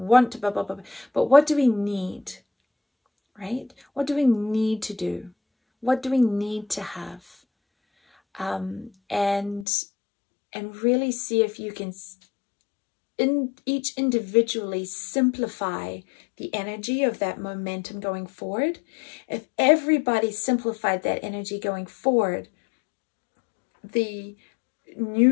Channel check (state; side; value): drops out; right; at 9.7 s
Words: to blah, blah, blah, but what do we need, right? What do we need to do? What do we need to have? And really see if you can each individually simplify the energy of that momentum going forward. If everybody simplified that energy going forward, the